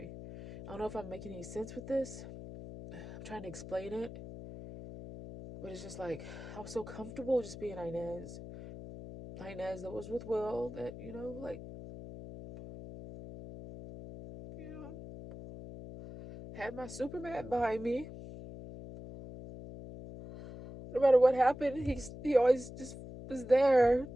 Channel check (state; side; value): noise; left; hum, 12 dB below the sound